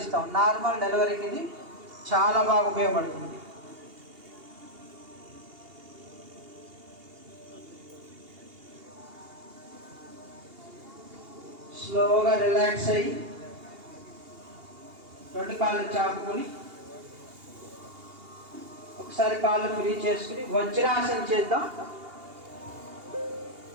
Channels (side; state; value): left; late; 2.8 ms